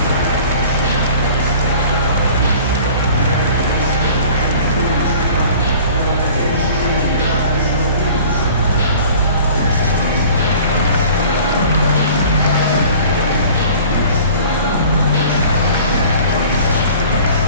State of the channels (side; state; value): both; inverted; correlation -0.47